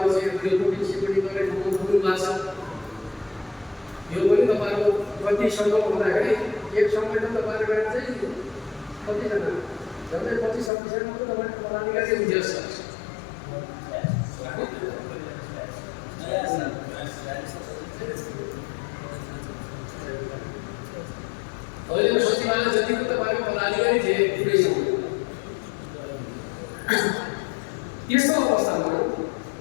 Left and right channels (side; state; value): right; drops out; at 10.7 s